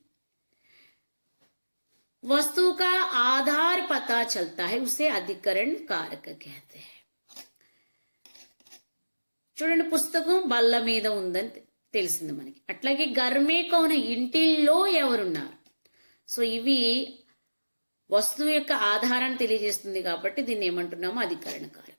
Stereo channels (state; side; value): inverted; both; correlation -1.00